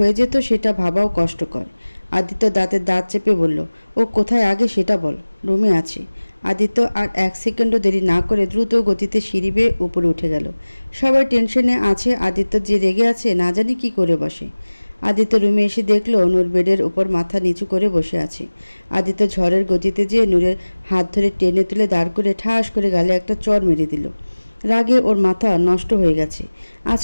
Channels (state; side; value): inverted; both; correlation -1.00